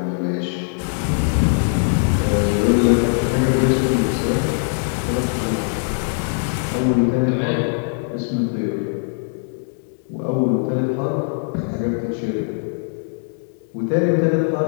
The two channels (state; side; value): silent; right; 65 dB below the other